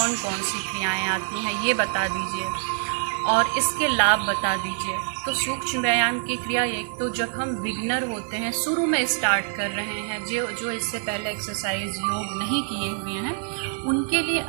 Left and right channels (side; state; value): left; silent; digital silence